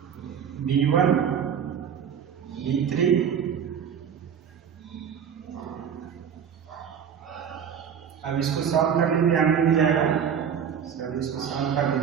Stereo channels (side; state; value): left; quieter; 7.9 dB